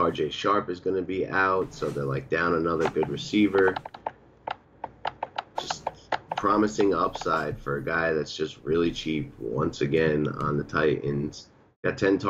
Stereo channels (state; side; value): identical; both; correlation 1.00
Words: Sharp is going to be out, so they're down another good receiver. Just promising upside for a guy that's just really cheap once again on the Titans. Got 10